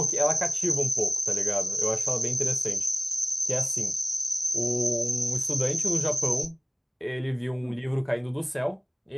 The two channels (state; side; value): identical; both; correlation 1.00